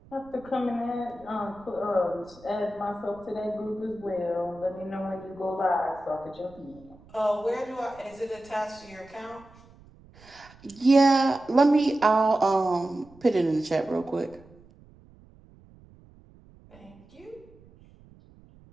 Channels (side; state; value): right; noise; rumble, 25 dB below the sound